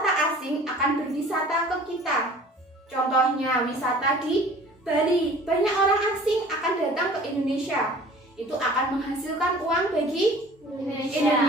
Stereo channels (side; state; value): both; normal; correlation 0.47